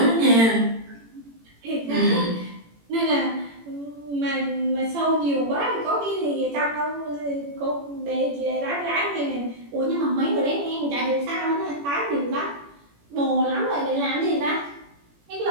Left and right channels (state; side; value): late; left; 18 ms